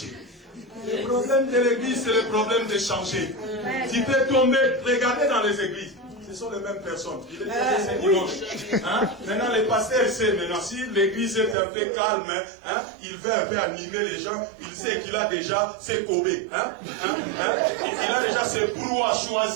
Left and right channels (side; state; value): left; drops out; at 11.6 s